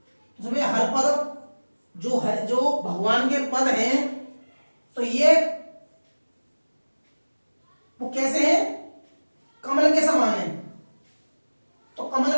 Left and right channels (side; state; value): both; inverted; correlation -1.00